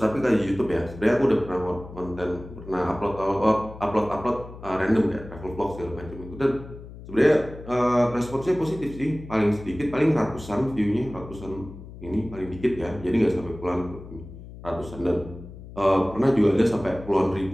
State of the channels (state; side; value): noise; left; hum, 15 dB below the sound